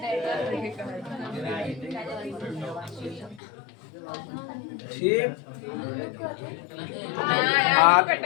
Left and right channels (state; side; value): drops out; right; at 3.4 s